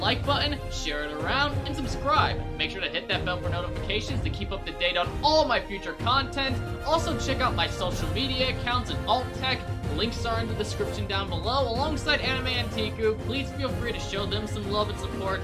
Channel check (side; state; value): both; identical; correlation 1.00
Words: button, share it around, and subscribe. Make sure to hit that bell for notifications to keep up to date on all my future content. Also check out my social media accounts and alt tech, The links are in the description down below, alongside Anime Anteiku. Please feel free to show them some love and support.